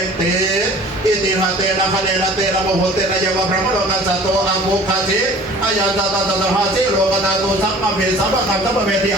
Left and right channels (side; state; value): both; normal; correlation 0.47